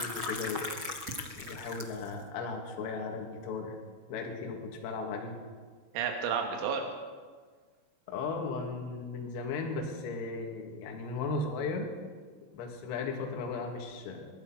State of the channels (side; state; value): left; late; 6.3 ms